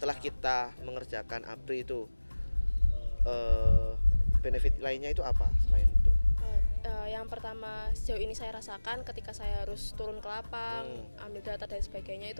kita mengerjakan APRI itu benefit lainnya itu apa selain itu? Yang pertama sejauh ini saya rasakan ketika saya harus turun ke lapang, ambil data dan sebagainya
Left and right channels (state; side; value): inverted; both; correlation -1.00